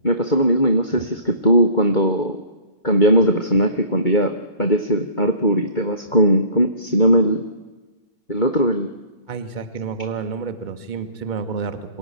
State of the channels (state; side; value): late; right; 2.2 ms